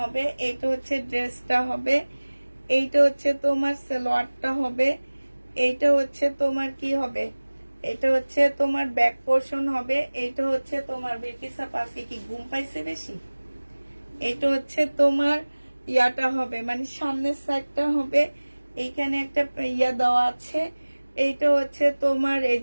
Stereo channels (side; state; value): both; inverted; correlation -1.00